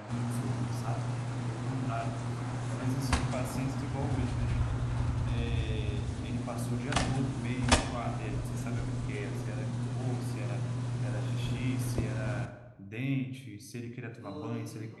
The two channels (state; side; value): identical; both; correlation 1.00